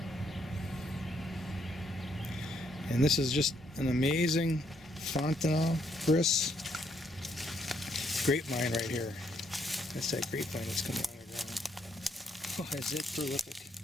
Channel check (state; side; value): normal; both; correlation 0.72